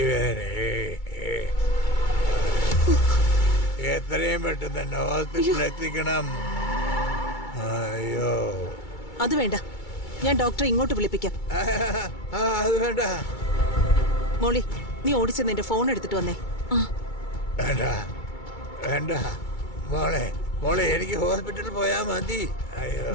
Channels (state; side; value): late; right; 2.3 ms